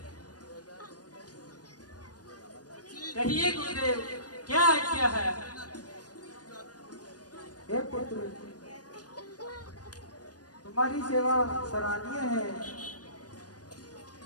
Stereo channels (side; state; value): right; late; 0.68 ms